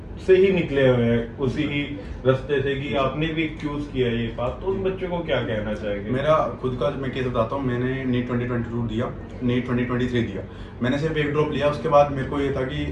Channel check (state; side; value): identical; both; correlation 1.00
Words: से ही निकले हुए हैं, उसी ही रास्ते से कि आपने भी चूज किया ये बात, तो उन बच्चों को क्या कहना चाहेंगे? मेरा खुद का मैं केस बताता हूँ। मैंने नीट 2022 दिया, नीट 2023 दिया। मैंने सिर्फ एक ड्रॉप लिया, उसके बाद मेरे को ये था कि